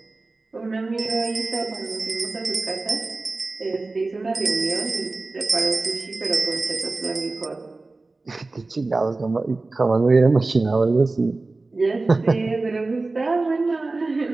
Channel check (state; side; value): quieter; left; 3.4 dB